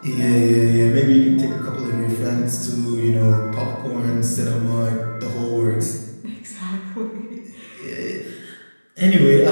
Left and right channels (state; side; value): inverted; both; correlation -1.00